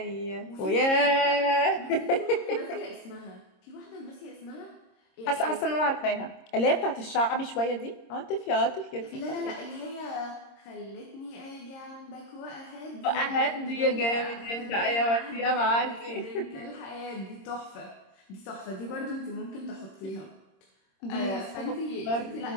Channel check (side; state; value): right; late; 26 ms